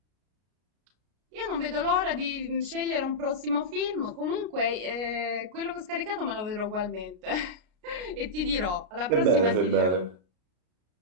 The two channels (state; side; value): late; left; 33 ms